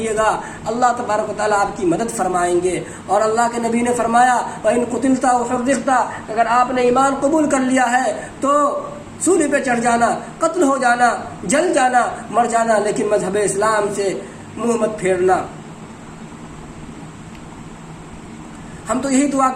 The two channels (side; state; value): both; identical; correlation 1.00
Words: گا، اللہ تبارک و تعالیٰ آپ کی مدد فرمائیں گے۔ اور اللہ کے نبی نے فرمایا وَإِن قُتِلْتَ وَحُرِّقْتَ، اگر آپ نے ایمان قبول کر لیا ہے تو سولی پہ چڑھ جانا، قتل ہو جانا، جل جانا، مر جانا، لیکن مذہب اسلام سے منہ مت پھیرنا۔ ہم تو یہی دعا